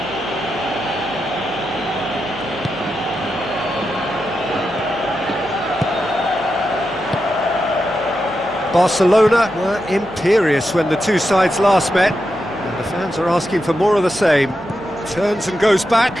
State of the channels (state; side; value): noise; left; hum, 23 dB below the sound